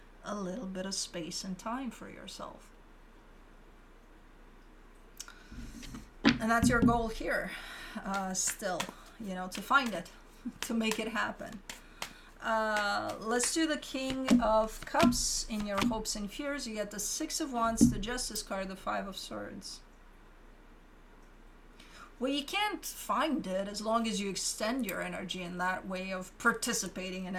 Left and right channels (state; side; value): identical; both; correlation 1.00